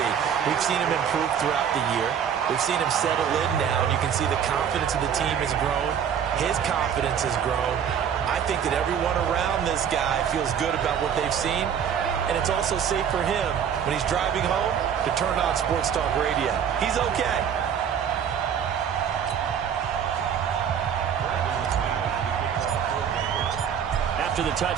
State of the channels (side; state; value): left; quieter; 8.2 dB